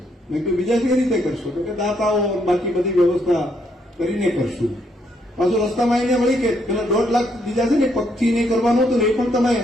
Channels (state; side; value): normal; both; correlation 0.73